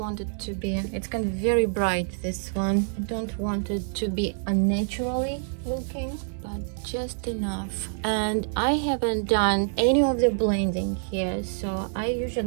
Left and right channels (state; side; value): silent; left; digital silence